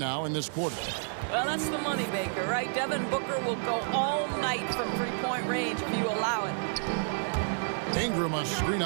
in this quarter. Well, that's the money maker, right? Devin Booker will go all night from three-point range if you allow it. Ingram a screen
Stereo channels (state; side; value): silent; left; digital silence